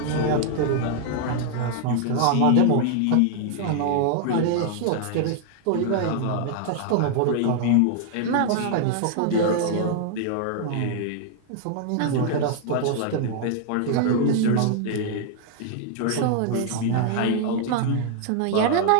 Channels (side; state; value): both; different; correlation 0.00